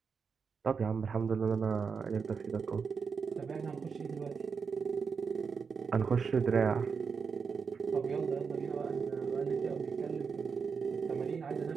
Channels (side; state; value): left; quieter; 5.7 dB